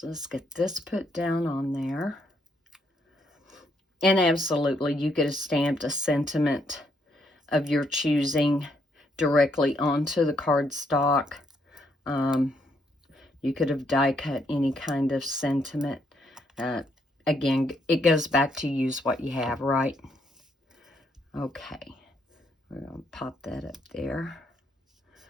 let's get this put down on there. And absolutely, you could have stamped a sentiment of your choosing directly onto the cardstock. You could have die cut any kind of sentiment. Again, it goes back to use what you have, right? Okay. We're going to pop that up there.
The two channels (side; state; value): both; normal; correlation 0.74